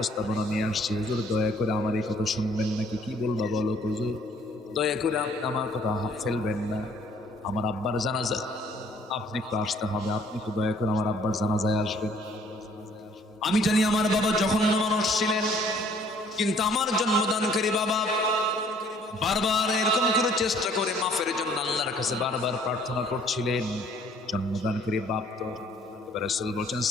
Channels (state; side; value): normal; both; correlation 0.59